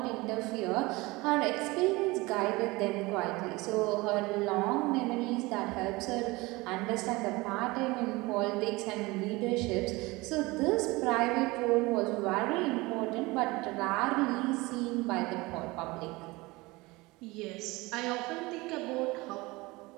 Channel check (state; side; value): quieter; left; 22.5 dB